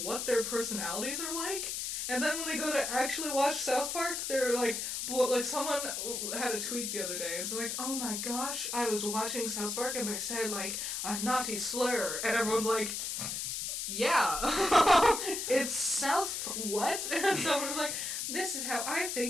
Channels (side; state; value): left; noise; hiss, 3 dB below the sound